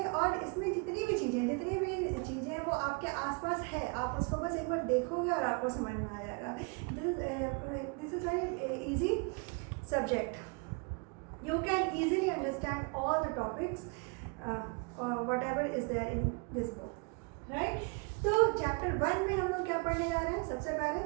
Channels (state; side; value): quieter; left; 33.1 dB